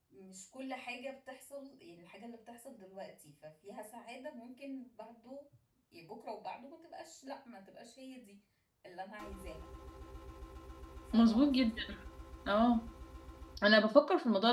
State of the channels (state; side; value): identical; both; correlation 1.00